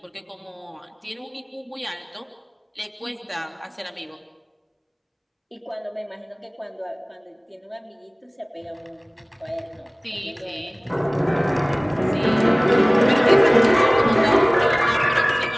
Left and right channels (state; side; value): identical; both; correlation 1.00